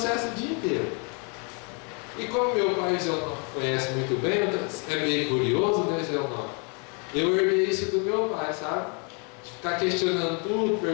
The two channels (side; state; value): right; quieter; 35.9 dB